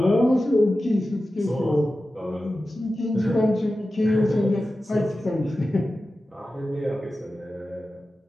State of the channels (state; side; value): normal; both; correlation 0.94